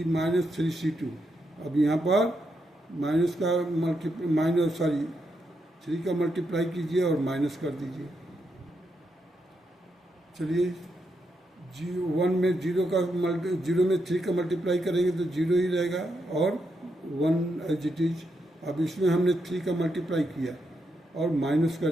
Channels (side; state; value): both; normal; correlation 0.82